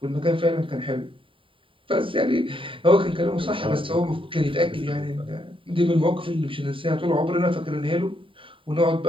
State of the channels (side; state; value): left; late; 0.25 ms